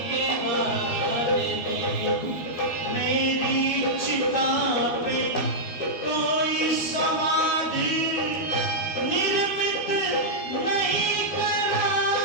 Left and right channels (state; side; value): late; right; 12 ms